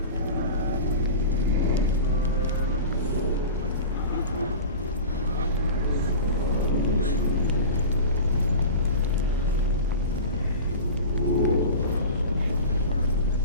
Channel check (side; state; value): both; inverted; correlation -0.32